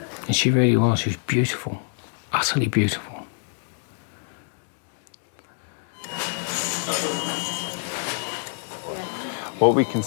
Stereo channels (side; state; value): right; silent; 61 dB below the other